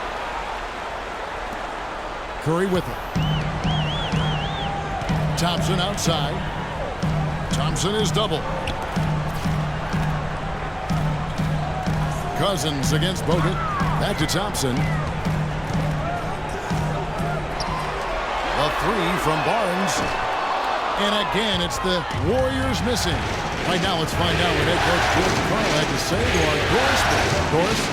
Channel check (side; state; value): both; identical; correlation 1.00